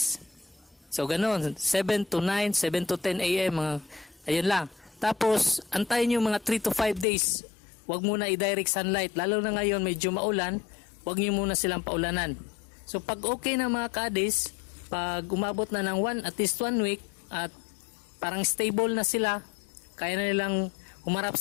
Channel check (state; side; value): drops out; right; at 7.1 s